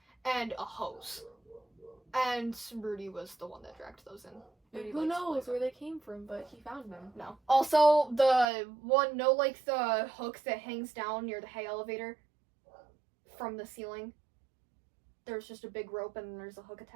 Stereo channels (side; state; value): left; drops out; at 8.5 s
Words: and a hose. And Rudy was the one that dragged those in. Rudy, who knows where they came from, but he found them. No. Also, the hook that hangs down near the hay elevator from the ceiling. There's just a big rope and there's a hook